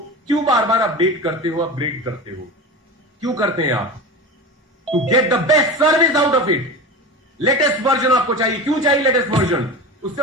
क्यों बार बार अपडेट करते हो, अपग्रेड करते हो? क्यों करते हैं आप? To get the best service out of it. Latest version आपको चाहिए। क्यों चाहिए लेटेस्ट वर्जन? उससे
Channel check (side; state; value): both; normal; correlation 0.28